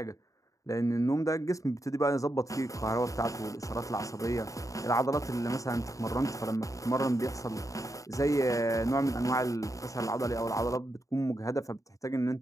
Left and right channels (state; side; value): late; right; 0.16 ms